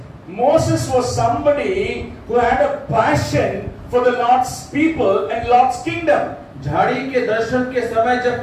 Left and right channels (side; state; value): both; identical; correlation 1.00